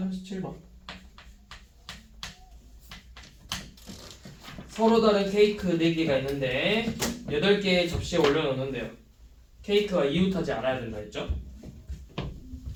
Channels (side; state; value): both; identical; correlation 1.00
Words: 37번. 서로 다른 케이크 4개가 있는데 8개의 접시에 올려놓는데요. 케이크가 이웃하지 않아야 된다 했죠?